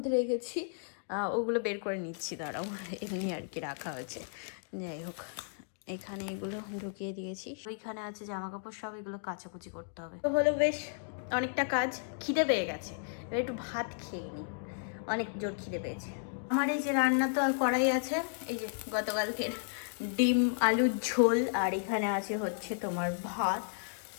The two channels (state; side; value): silent; right; digital silence